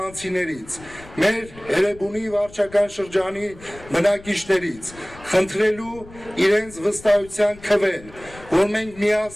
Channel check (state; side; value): noise; left; rumble, 20 dB below the sound